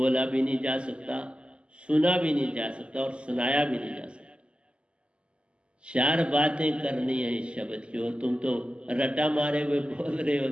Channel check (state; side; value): late; left; 0.054 ms